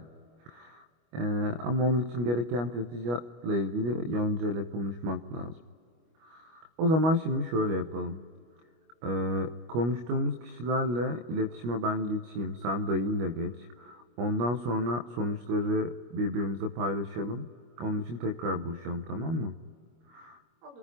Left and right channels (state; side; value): late; left; 25 ms